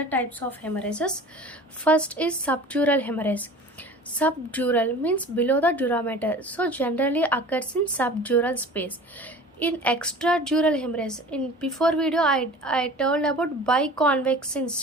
types of hemorrhages. First is subdural hemorrhage. Subdural means below the durameter, so generally occurs in subdural space. In extradural hemorrhage, in before video I told about biconvex in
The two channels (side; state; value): both; normal; correlation 0.41